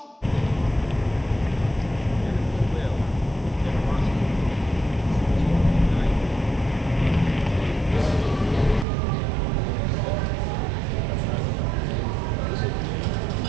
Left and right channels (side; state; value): left; drops out; at 8.8 s